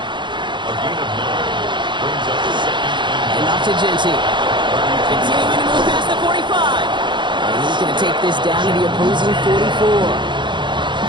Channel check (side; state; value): left; late; 0.23 ms